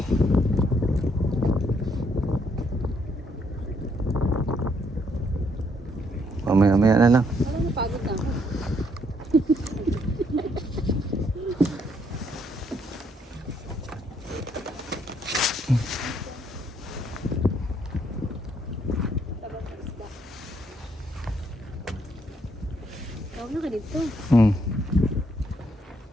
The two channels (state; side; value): normal; both; correlation 0.71